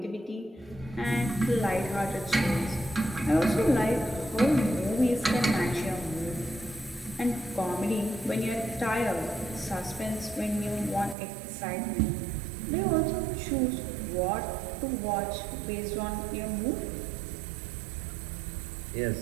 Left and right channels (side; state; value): left; drops out; at 11.2 s